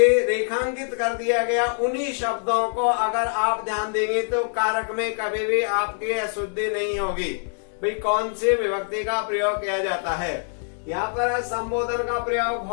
रेखांकित कर दिया गया उन्हीं शब्दों को अगर आप ध्यान देंगे तो कारक में कभी भी आपकी अशुद्धि नहीं होगी। भाई कौन सी विभक्ति का प्रयोग किया जाता है। यहाँ पर संबोधन का प्रयोग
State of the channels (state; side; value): silent; right; 62 dB below the other